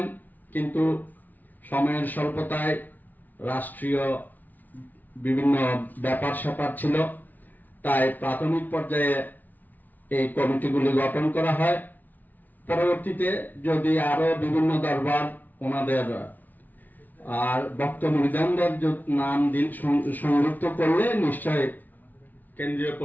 কিন্তু সময়ের স্বল্পতায় রাষ্ট্রীয় বিভিন্ন ব্যাপার স্যাপার ছিল, তাই প্রাথমিক পর্যায়ে এই কমিটিগুলি গঠন করা হয়। পরবর্তীতে যদি আরো বিভিন্ন দরবার ওনাদের আর ভক্ত মুরিদানদের নাম সংযুক্ত করলে নিশ্চয় কেন্দ্রীয়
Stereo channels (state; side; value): late; right; 0.082 ms